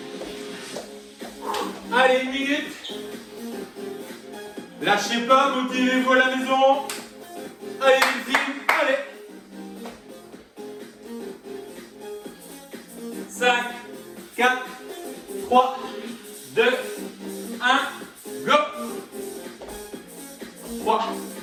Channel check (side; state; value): both; identical; correlation 1.00